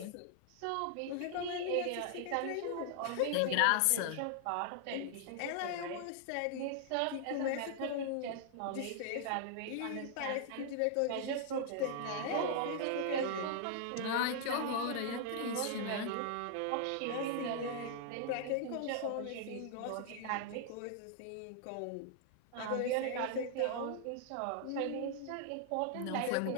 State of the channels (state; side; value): different; both; correlation -0.01